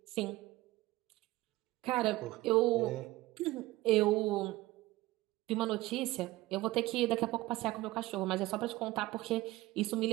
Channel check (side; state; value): left; quieter; 18.3 dB